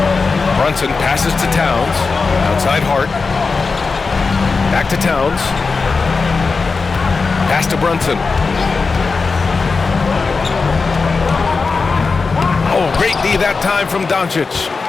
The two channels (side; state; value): right; quieter; 4.4 dB